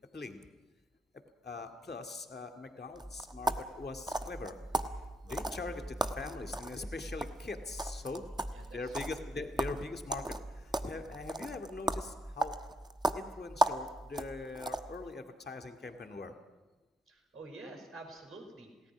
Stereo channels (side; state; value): both; normal; correlation 0.75